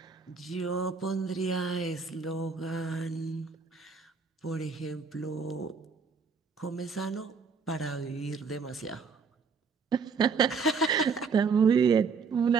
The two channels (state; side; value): quieter; left; 5.2 dB